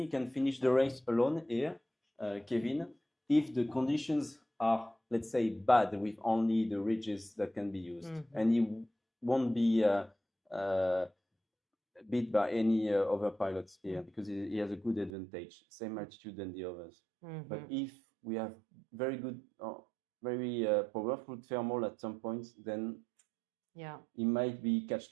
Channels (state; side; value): drops out; left; at 15.1 s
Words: he can finish the race alone here, Kevin, if the conditions are, let's say, bad with only the ridges that can be used, and he won't be beat by any other pilots here because he has a good advantage, same altitude than the others. But if we have very good, very powerful thermal at some point, then Yeah. he might be